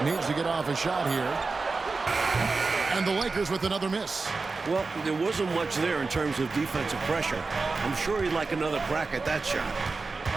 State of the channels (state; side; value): quieter; left; 4.0 dB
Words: needs to get off a shot here. And the Lakers with another miss. Well, there wasn't much there in terms of defensive pressure. I'm sure he'd like another crack at that shot.